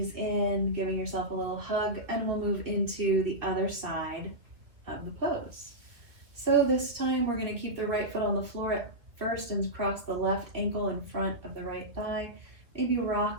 in, giving yourself a little hug, and we'll move into the other side of the pose. So this time we're going to keep the right foot on the floor at first and cross the left ankle in front of the right thigh. Maybe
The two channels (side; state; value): left; late; 2.3 ms